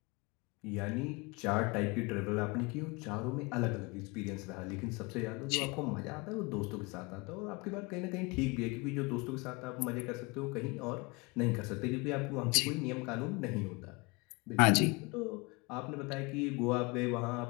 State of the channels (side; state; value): right; quieter; 27.3 dB